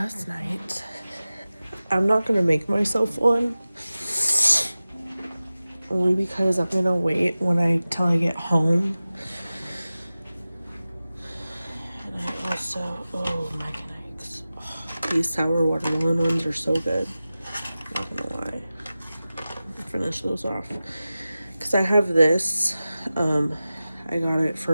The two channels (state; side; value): inverted; both; correlation -0.96